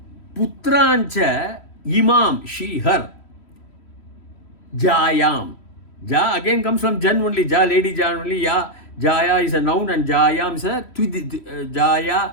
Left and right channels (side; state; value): right; late; 3.1 ms